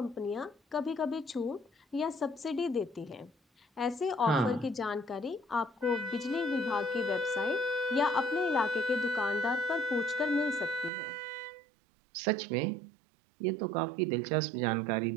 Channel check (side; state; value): left; drops out; at 10.9 s